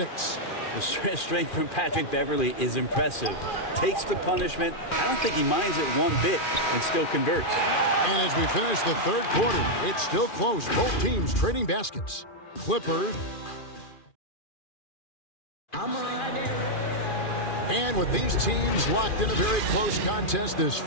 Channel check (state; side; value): late; right; 2.4 ms